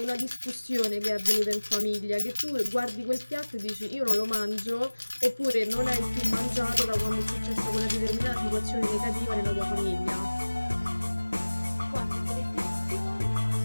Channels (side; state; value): both; inverted; correlation -1.00